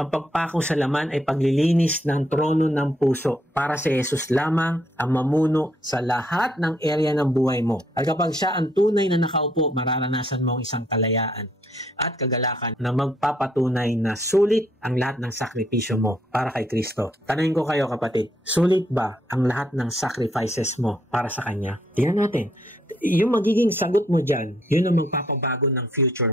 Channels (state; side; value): normal; both; correlation 0.71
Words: pagpako sa laman ay paglilinis ng trono ng puso para si Jesus lamang ang mamuno sa lahat ng area ng buhay mo. At kapag siya ang tunay na nakaupo, mararanasan mo ang isang kalayaan at kagalakan na magpapatunay na sulit ang lahat ng sakripisyo mo para kay Kristo. Tanungin ko kayo kapatid, sulit ba ang lahat ng sacrifices mo para sa Kanya? Tingnan natin. Yung magiging sagot mo dyan, yun ang magpapabago ng future